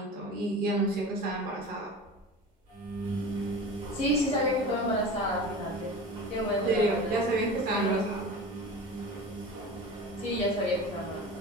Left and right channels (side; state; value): both; normal; correlation 0.34